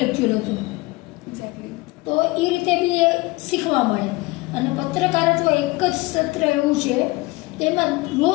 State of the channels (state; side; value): quieter; right; 22.8 dB